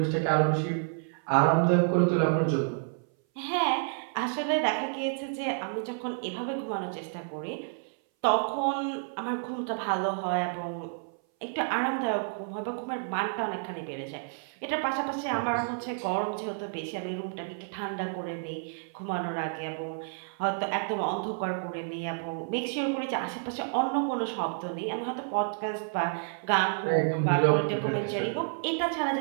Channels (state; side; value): silent; left; 57 dB below the other